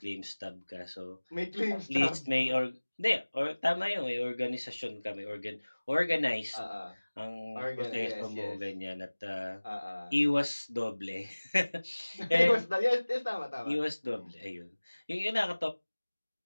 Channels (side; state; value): both; inverted; correlation -1.00